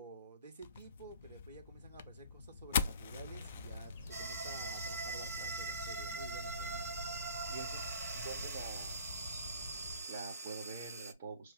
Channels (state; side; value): inverted; both; correlation -0.50